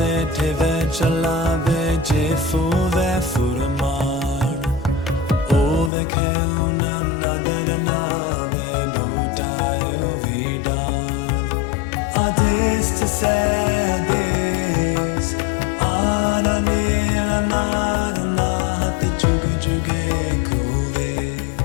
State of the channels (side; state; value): right; drops out; at 5.9 s